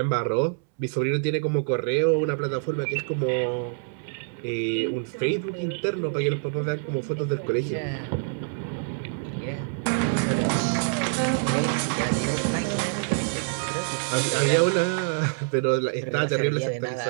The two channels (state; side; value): silent; left; 61 dB below the other